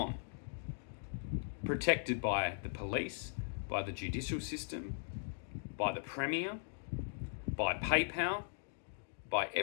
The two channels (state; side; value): silent; right; digital silence